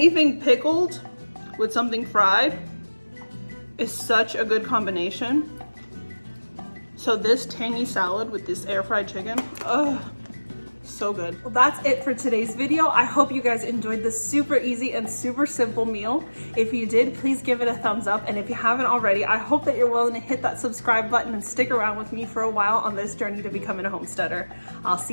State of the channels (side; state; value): both; inverted; correlation -1.00